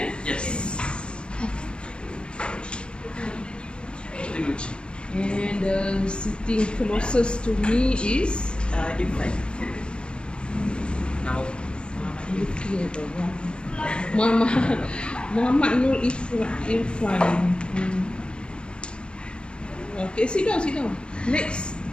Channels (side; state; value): right; late; 0.054 ms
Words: Yes. Group G. And sitting closest to me is? Ifan. Now, Muhammad Nur Irfan. Okay, sit down. Next.